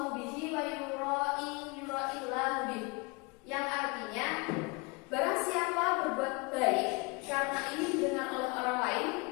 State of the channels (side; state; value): right; quieter; 28.8 dB